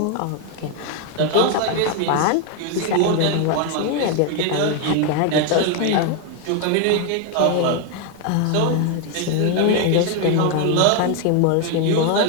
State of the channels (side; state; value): both; different; correlation 0.01